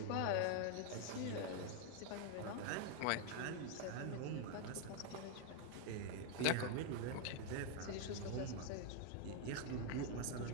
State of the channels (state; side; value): different; both; correlation 0.01